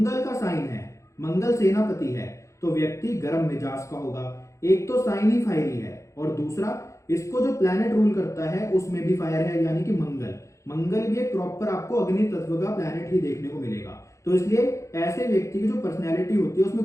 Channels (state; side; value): late; right; 0.15 ms